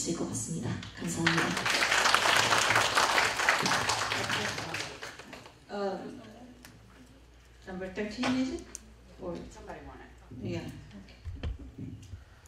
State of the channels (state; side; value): identical; both; correlation 1.00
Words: 것 같습니다. 감사합니다. Number 13 is it? Or somebody want it? Yeah.